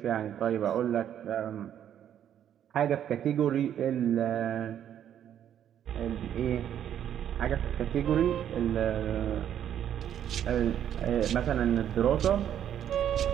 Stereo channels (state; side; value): quieter; left; 10.0 dB